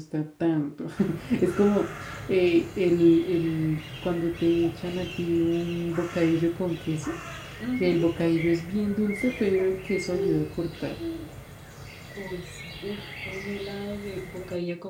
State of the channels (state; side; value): identical; both; correlation 1.00